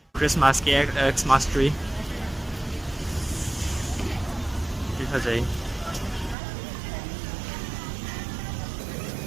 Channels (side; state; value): left; drops out; at 6.4 s